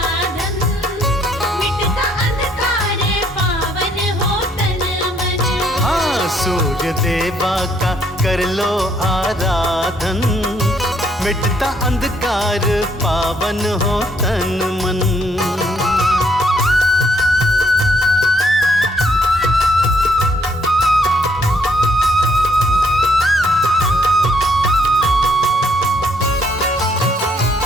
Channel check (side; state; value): both; normal; correlation 0.69